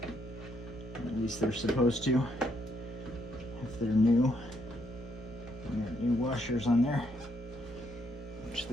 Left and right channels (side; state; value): right; noise; hum, 16 dB below the sound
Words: At least they're supposed to, if they're new. And there are new washers on there, which